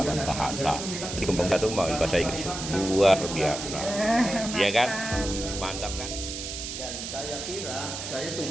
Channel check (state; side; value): noise; right; hiss, 7 dB below the sound